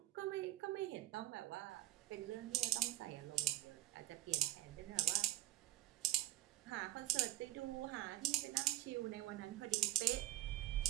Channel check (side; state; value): left; quieter; 15.7 dB